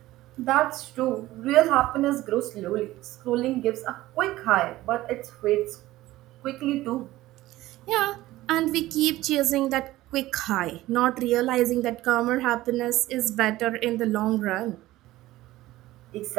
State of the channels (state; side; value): quieter; left; 16.6 dB